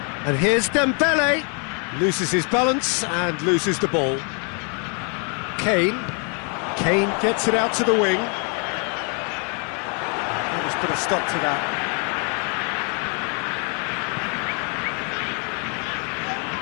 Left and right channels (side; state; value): right; quieter; 37.9 dB